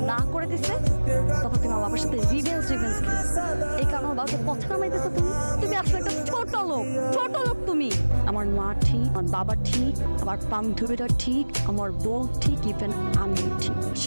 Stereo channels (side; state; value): both; inverted; correlation -1.00